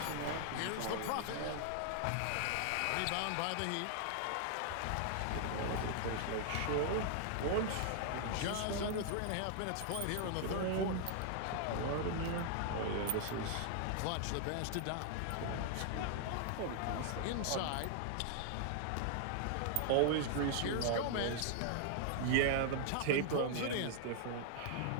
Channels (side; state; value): both; different; correlation 0.00